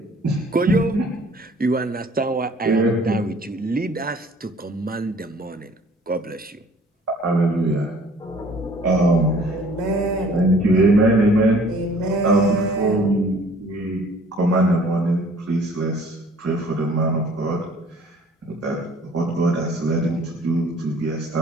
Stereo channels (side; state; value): both; normal; correlation 0.54